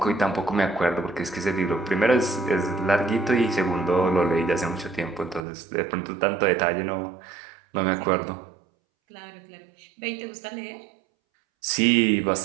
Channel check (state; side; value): drops out; left; at 5.4 s